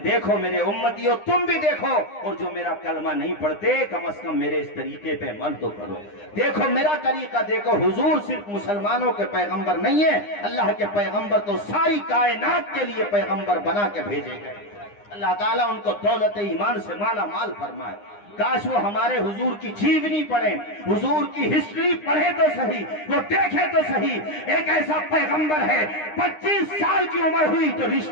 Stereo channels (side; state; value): right; late; 9.8 ms